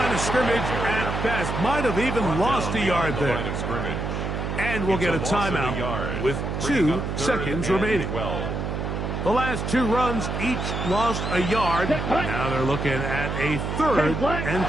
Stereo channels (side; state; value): right; noise; hum, 3 dB below the sound